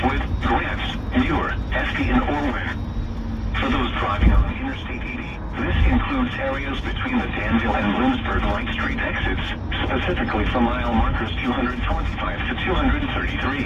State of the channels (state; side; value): identical; both; correlation 1.00